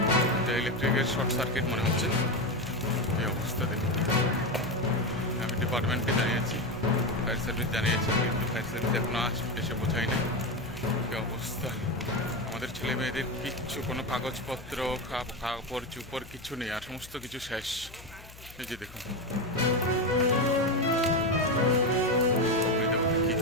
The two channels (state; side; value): noise; left; hum, 19 dB below the sound